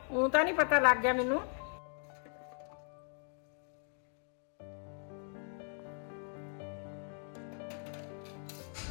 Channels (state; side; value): silent; right; 53 dB below the other